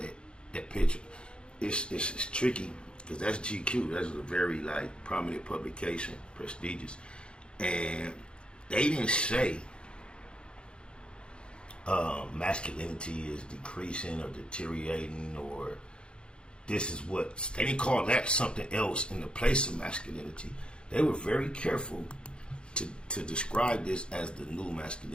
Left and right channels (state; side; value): late; right; 0.054 ms